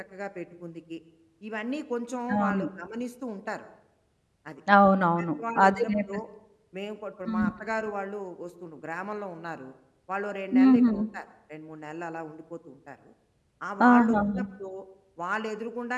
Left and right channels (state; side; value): identical; both; correlation 1.00